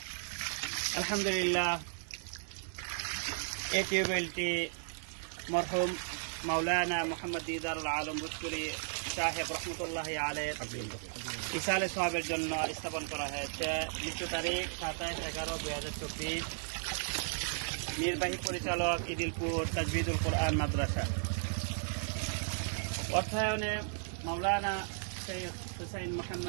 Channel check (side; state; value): left; silent; digital silence